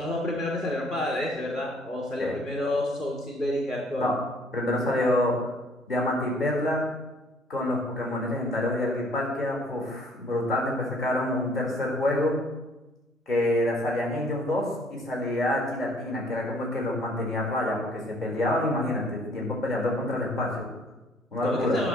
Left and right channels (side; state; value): both; normal; correlation 0.59